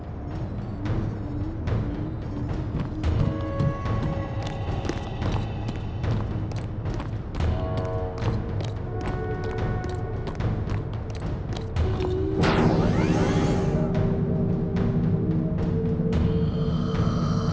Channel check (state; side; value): identical; both; correlation 1.00